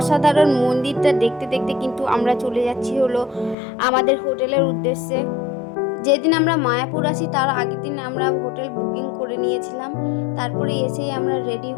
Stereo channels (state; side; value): drops out; right; at 3.6 s